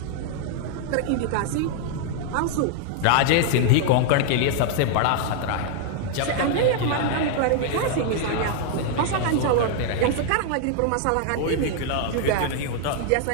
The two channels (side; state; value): both; different; correlation 0.00